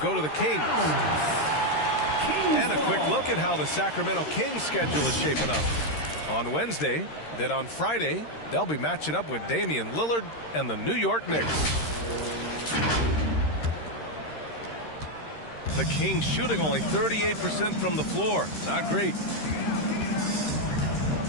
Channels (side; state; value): right; late; 13 ms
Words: to the Kings. And a quick look at how the Sacramento Kings schedule is shaping up. On Wednesday, then on Friday, they'll be matching up with Damian Lillard and the New York Knicks. The Kings shooting only 38% from the floor. Not great.